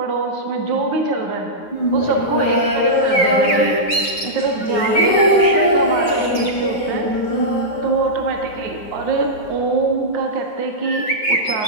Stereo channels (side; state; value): right; late; 9.2 ms